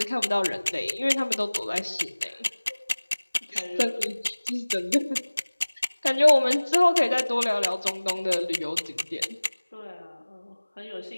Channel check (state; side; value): inverted; both; correlation -1.00